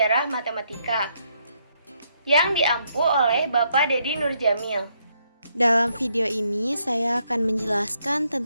Matematika yang diampu oleh Bapak Dedi Nurjamil. Dalam video ini saya akan menjelaskan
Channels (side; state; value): both; inverted; correlation -0.74